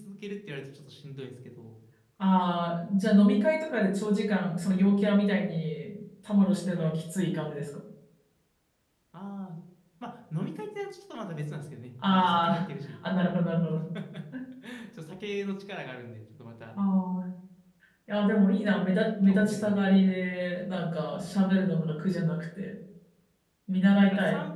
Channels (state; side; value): identical; both; correlation 1.00